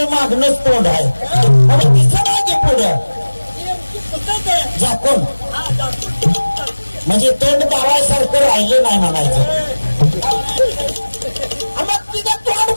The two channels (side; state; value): both; inverted; correlation -1.00